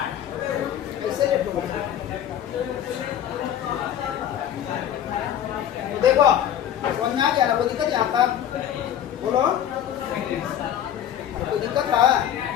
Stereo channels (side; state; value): right; quieter; 10.4 dB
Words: ऐसे लेट हो। देखो समझ में आ गया ना, कोई दिक्कत यहाँ तक बोलो, कोई दिक्कत है